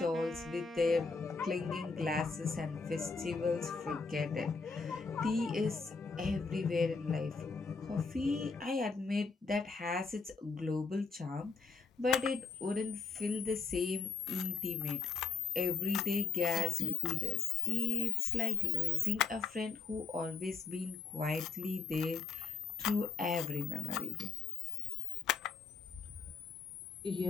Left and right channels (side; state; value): right; quieter; 4.9 dB